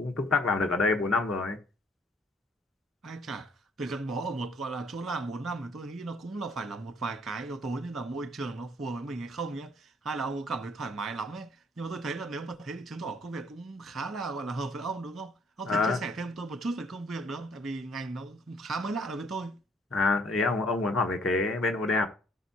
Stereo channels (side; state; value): both; normal; correlation 0.62